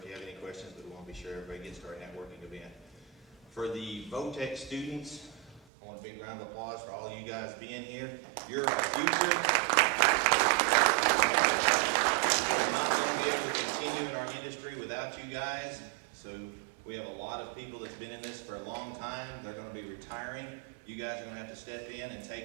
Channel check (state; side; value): drops out; left; at 5.7 s